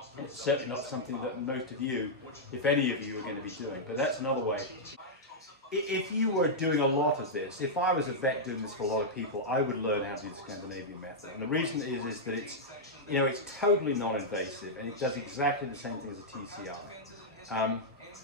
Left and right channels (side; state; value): both; normal; correlation -0.07